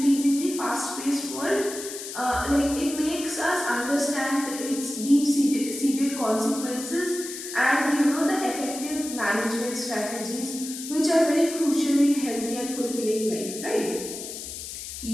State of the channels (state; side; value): noise; left; hiss, 9 dB below the sound